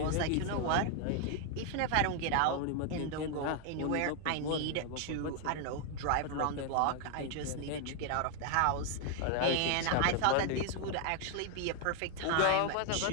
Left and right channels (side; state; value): both; different; correlation 0.00